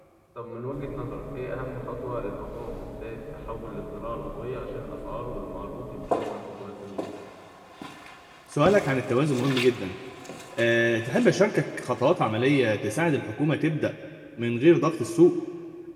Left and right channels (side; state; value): both; identical; correlation 1.00